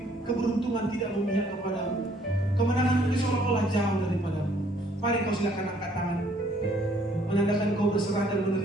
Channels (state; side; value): normal; both; correlation 0.63